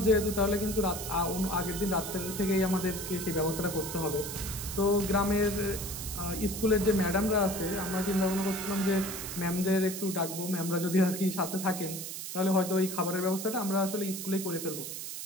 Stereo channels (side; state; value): right; noise; hiss, 7 dB below the sound